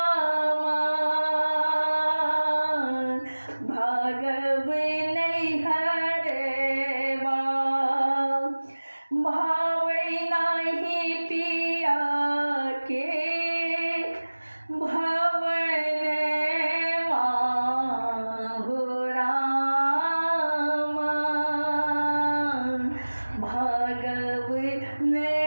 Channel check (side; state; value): both; inverted; correlation -1.00